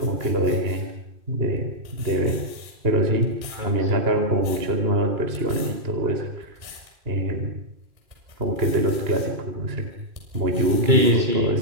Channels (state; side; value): late; left; 2.3 ms